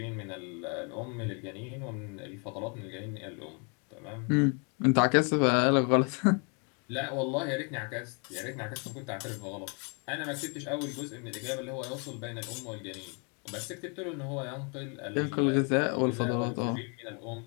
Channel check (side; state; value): right; quieter; 36.1 dB